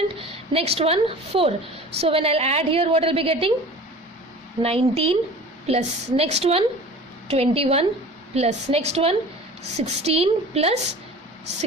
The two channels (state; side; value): normal; both; correlation 0.41